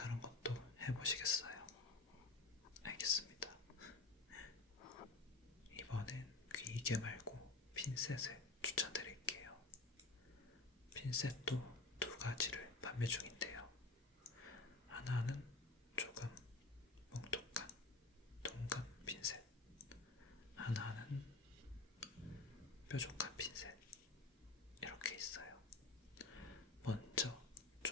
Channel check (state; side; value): quieter; right; 3.5 dB